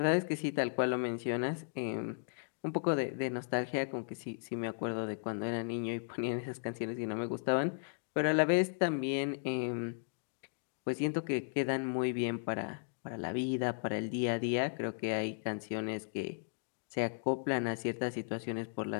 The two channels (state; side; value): silent; right; digital silence